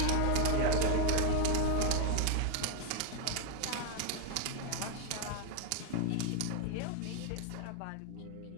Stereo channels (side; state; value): both; different; correlation 0.01